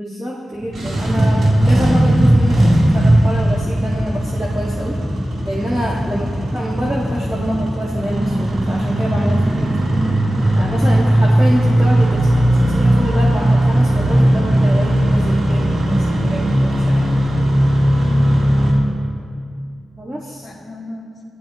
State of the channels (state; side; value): normal; both; correlation 0.96